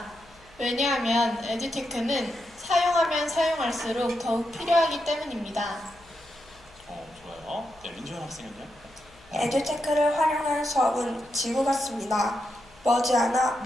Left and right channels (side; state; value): left; noise; hum, 26 dB below the sound